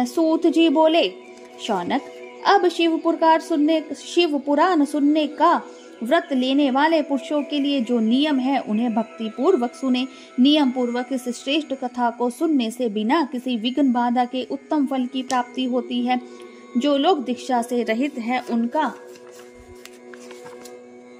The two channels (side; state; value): both; identical; correlation 1.00